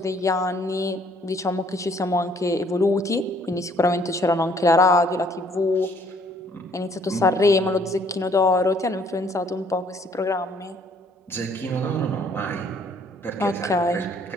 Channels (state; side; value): normal; both; correlation 0.62